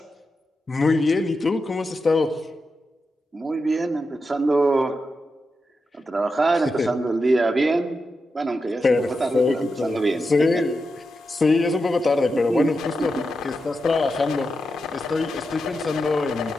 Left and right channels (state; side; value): normal; both; correlation 0.88